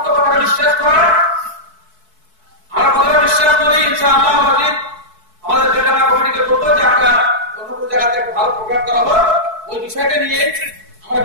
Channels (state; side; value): late; left; 4.6 ms